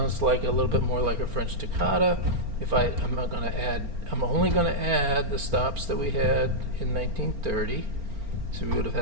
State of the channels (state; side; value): late; left; 4.4 ms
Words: like a little bit more like a French toccata. I'm only going to add the stops that we had in 1930. So we would have